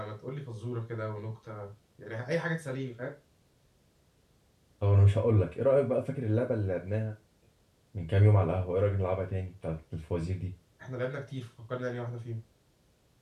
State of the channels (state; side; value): identical; both; correlation 1.00